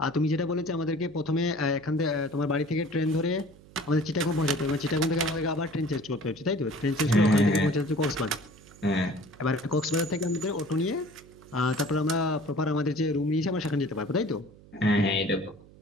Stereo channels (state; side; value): noise; right; hum, 23 dB below the sound